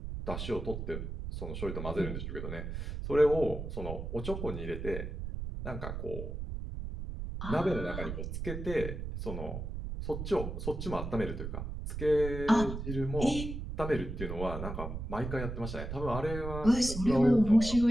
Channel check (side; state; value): right; noise; rumble, 6 dB below the sound